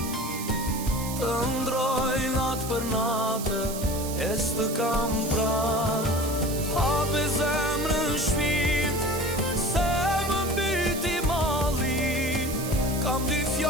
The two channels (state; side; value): noise; right; hiss, 9 dB below the sound